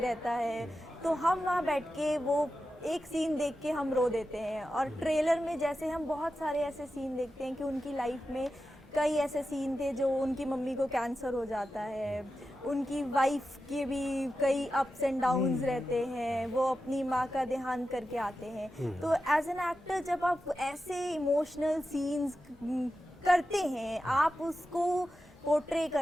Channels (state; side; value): normal; both; correlation 0.91